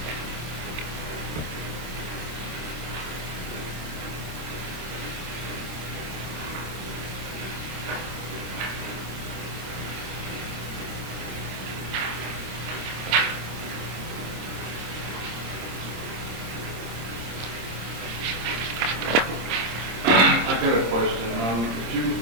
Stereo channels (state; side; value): late; left; 26 ms